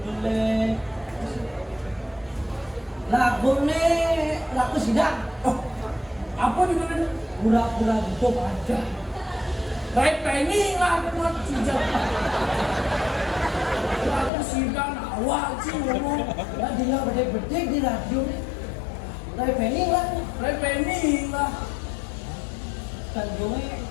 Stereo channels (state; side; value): drops out; right; at 14.3 s